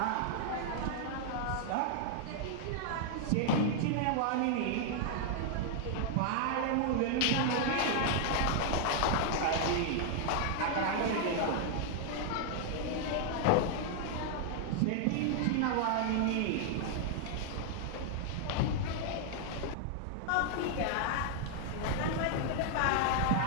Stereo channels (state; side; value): different; both; correlation 0.00